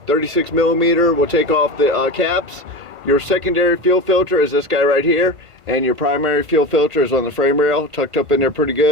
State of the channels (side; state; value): left; late; 1.5 ms